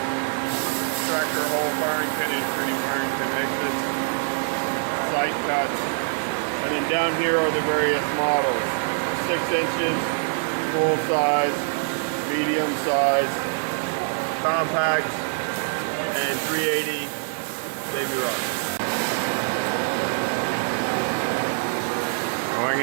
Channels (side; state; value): left; silent; digital silence